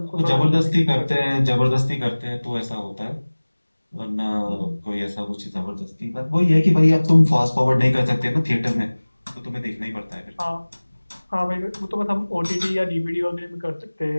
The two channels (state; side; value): inverted; both; correlation -1.00